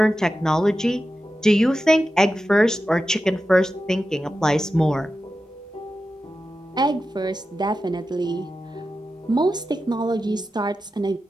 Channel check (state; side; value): normal; both; correlation 0.92